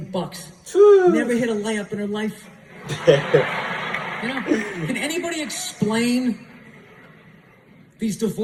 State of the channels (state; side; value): identical; both; correlation 1.00